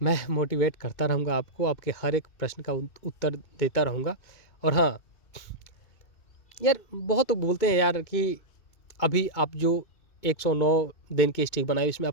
मैं मोटिवेट करता रहूँगा आपको, आपके हर एक प्रश्न का उत्तर देता रहूँगा। और हाँ यार, बहुत लोग बोलते हैं यार कि अभी आप जो 109 दिन की स्ट्रिक बनाई इसमें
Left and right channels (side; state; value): right; late; 2.2 ms